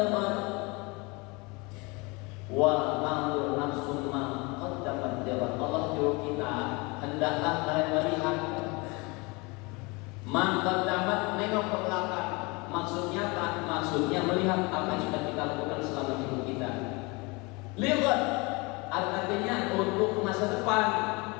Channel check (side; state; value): right; quieter; 27.1 dB